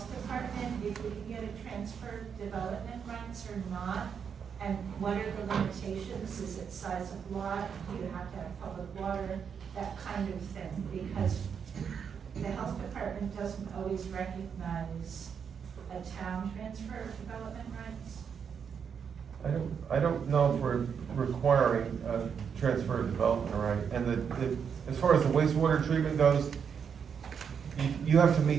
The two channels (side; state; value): left; quieter; 7.0 dB